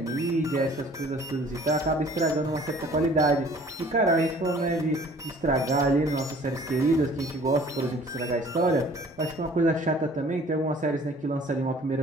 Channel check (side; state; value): both; normal; correlation 0.52